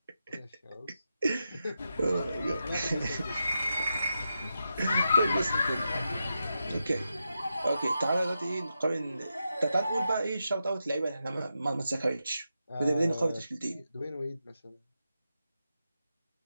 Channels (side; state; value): both; inverted; correlation -0.87